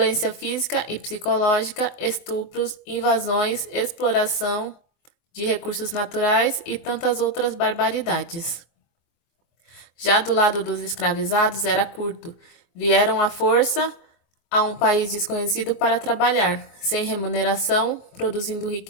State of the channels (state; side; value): late; right; 24 ms